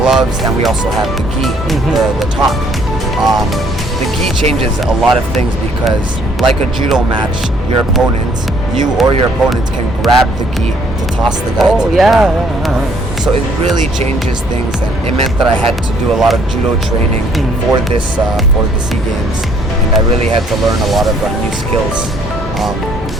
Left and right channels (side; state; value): both; normal; correlation 0.63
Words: and we also have the gi, the top. The gi changes a lot of things because, like a judo match, you or your opponent can grab the gi to toss the guy to the ground. So it really changes things, and it meant that I had to do a lot of judo training for the SEA Games, and I really had to learn a lot of new skills.